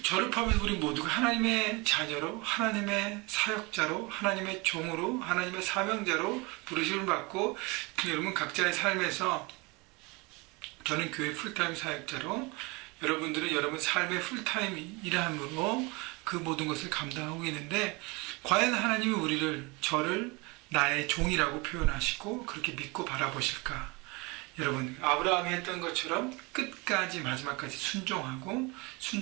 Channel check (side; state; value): left; quieter; 25.9 dB